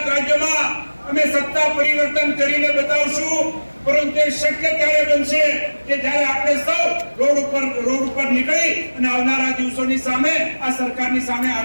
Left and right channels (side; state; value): both; inverted; correlation -1.00